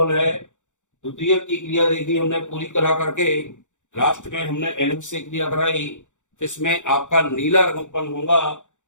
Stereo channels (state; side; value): late; right; 0.85 ms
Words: है। द्वितीयक की क्रिया देखी हमने पूरी करा करके, लास्ट में हमने NH से क्रिया कराई तो इसमें आपका नीला रंग उत्पन्न होगा,